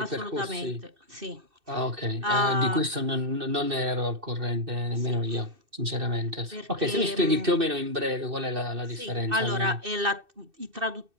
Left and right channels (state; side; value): late; left; 2.6 ms